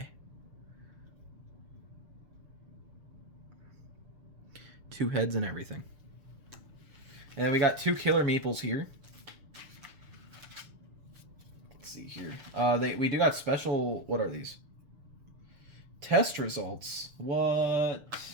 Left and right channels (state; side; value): late; left; 6.8 ms